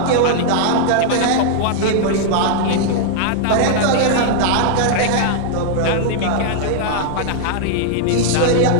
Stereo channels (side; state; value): both; different; correlation -0.01